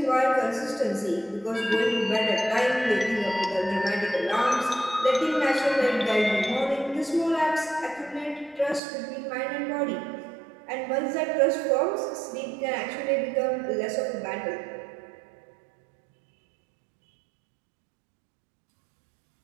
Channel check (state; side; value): drops out; left; at 8.8 s